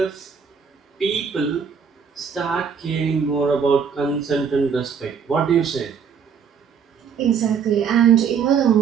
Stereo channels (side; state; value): left; quieter; 6.7 dB